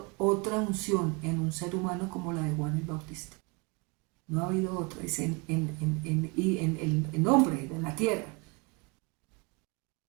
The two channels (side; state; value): left; quieter; 29.4 dB